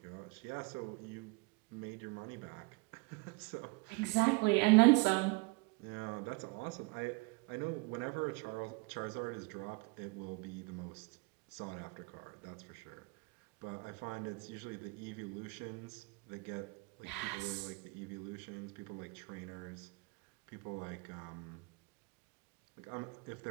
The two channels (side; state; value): left; quieter; 26.8 dB